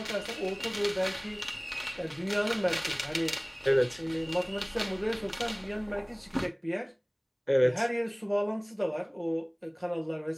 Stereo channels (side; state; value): both; identical; correlation 1.00